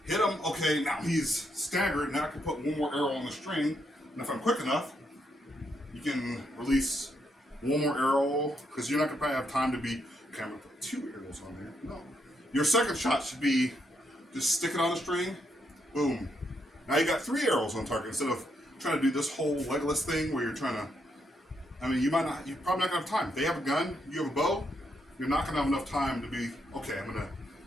Hit him. Okay, now he's staggered. Now I can put one more arrow on the string, and if I'm quick enough, you can release one more arrow, because you're not going to probably have time to be, okay, I'm going to put 2 arrows on there. No. Your second shot should be just stick it on the string, boom. Now you got 3 arrows on target instead of trying to do this whole Legolas thing where you're trying to, I mean, you're probably not going to have time. If they have a gun, you have a bow, you're not going to have enough time to be, okay, I'm going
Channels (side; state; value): both; normal; correlation 0.78